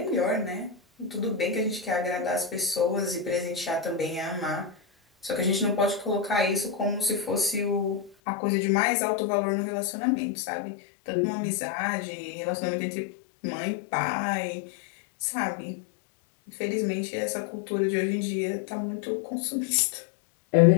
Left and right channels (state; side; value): drops out; right; at 8.2 s